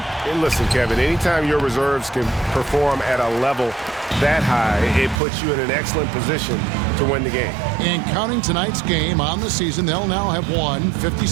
And listen, Kevin, anytime your reserves can perform at a level that high, it puts you in an excellent position to win the game. And counting tonight's game on the season, they'll now have won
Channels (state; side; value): drops out; left; at 5.2 s